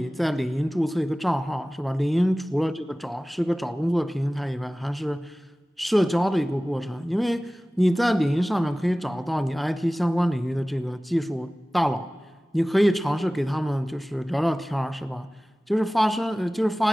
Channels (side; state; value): both; normal; correlation 0.98